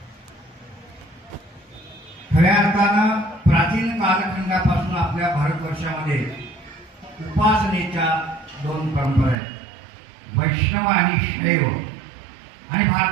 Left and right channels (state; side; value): drops out; left; at 9.3 s